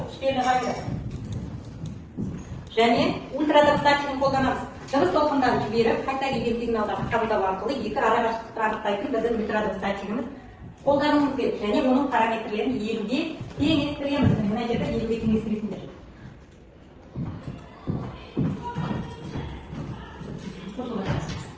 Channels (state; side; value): identical; both; correlation 1.00